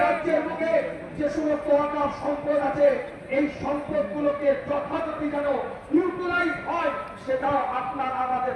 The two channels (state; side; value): identical; both; correlation 1.00